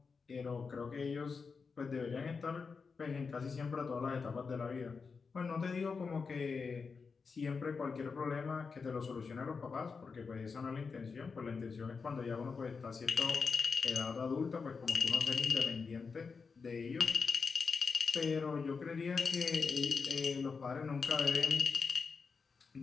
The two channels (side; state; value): right; quieter; 5.1 dB